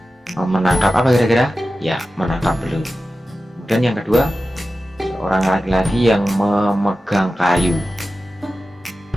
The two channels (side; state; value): both; normal; correlation 0.94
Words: Menangkap apa kira-kira? Ya, menangkap belut. Kemudian yang kedua, seorang laki-laki yang memegang kayu.